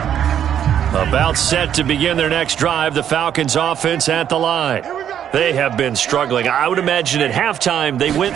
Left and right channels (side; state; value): left; quieter; 9.6 dB